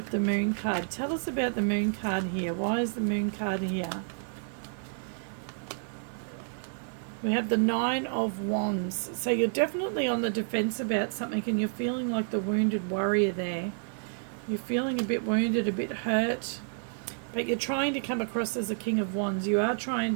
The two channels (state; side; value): silent; left; 56 dB below the other